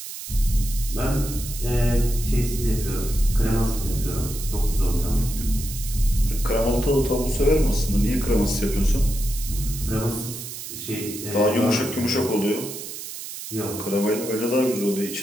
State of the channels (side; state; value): right; noise; hiss, 9 dB below the sound